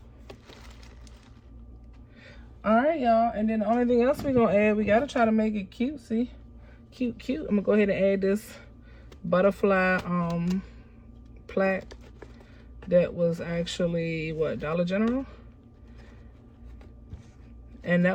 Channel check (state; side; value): identical; both; correlation 1.00